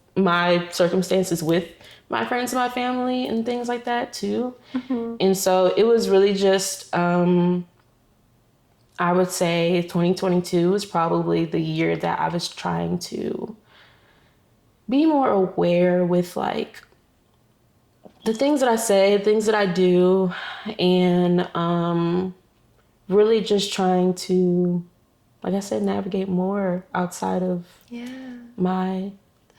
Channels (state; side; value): identical; both; correlation 1.00